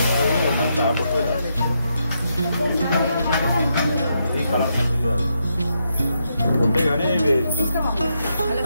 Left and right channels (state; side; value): inverted; both; correlation -0.81